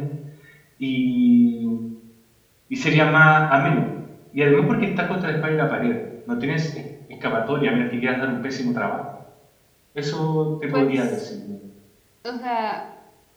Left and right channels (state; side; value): identical; both; correlation 1.00